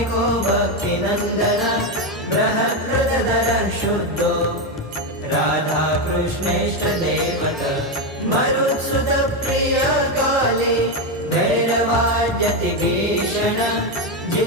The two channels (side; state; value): both; normal; correlation 0.09